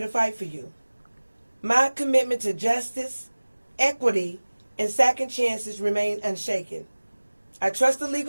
fight for you. My commitment to justice, equity, and second chances remain unshaken. I trust the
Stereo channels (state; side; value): inverted; both; correlation -1.00